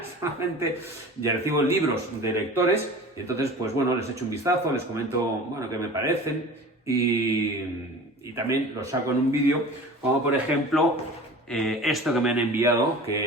Solamente ya recibo libros de lectores, y entonces, pues bueno, les echo un vistazo, les comento, bueno, qué me parecen, y también los saco en un vídeo, como por ejemplo esto que me han enviado,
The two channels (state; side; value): normal; both; correlation 0.39